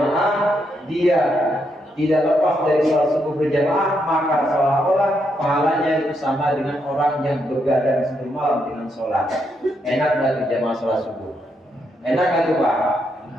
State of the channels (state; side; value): normal; both; correlation 0.79